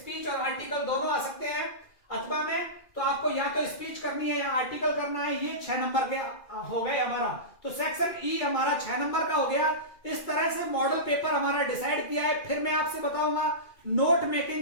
और आर्टिकल दोनों आ सकते हैं। अथवा में तो आपको या तो स्पीच करनी है या आर्टिकल करना है। ये 6 नंबर के हो गए हमारा। तो सेक्शन ई हमारा 6 नंबर का हो गया। इस तरह से मॉडल पेपर हमारा डिसाइड किया है। फिर मैं आपसे बताऊंगा नोट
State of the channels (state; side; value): late; right; 2.4 ms